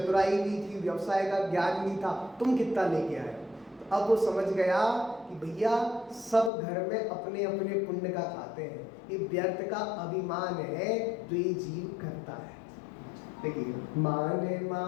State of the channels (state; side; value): drops out; right; at 6.5 s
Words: भी थी, व्यवसाय का ज्ञान भी था, तुम कितना लेके आए। तो अब वो समझ गया कि भैया सब घर में अपने अपने पुण्य का खाते हैं, ये व्यर्थ का अभिमान है जो ये जीव करता है। देखिए, मान